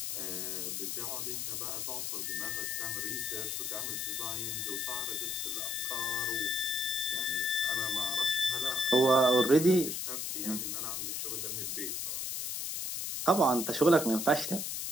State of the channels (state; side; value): noise; left; hiss, 3 dB below the sound